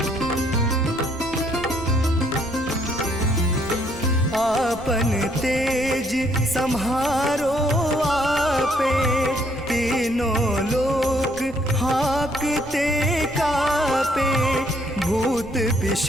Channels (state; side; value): noise; right; rumble, 18 dB below the sound